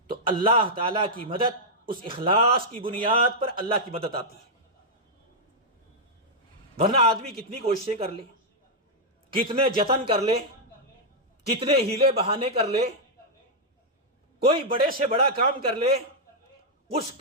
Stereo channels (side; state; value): both; normal; correlation -0.05